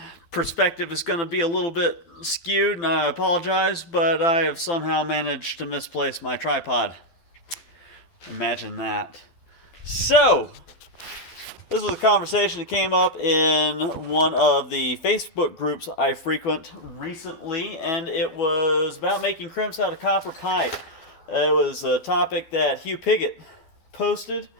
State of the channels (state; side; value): late; right; 12 ms